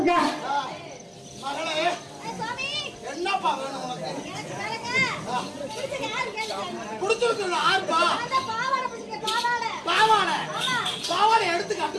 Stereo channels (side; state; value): both; identical; correlation 1.00